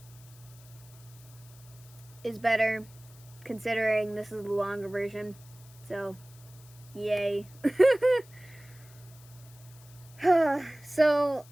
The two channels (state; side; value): noise; left; hiss, 24 dB below the sound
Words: is better considering this is the longer version. So, yay. So,